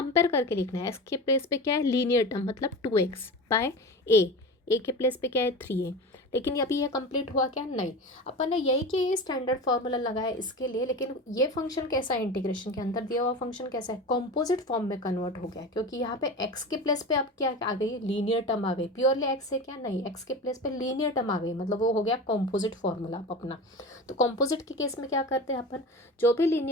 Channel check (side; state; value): both; normal; correlation 0.30